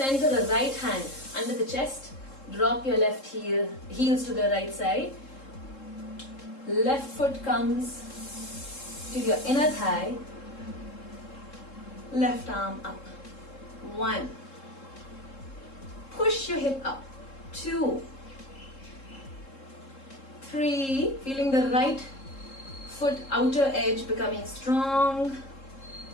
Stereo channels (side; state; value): right; late; 3.7 ms